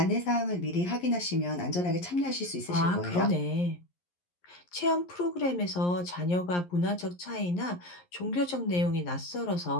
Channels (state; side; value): late; right; 11 ms